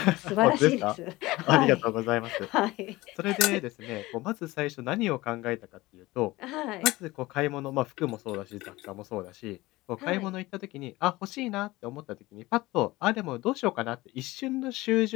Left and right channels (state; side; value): quieter; right; 19.7 dB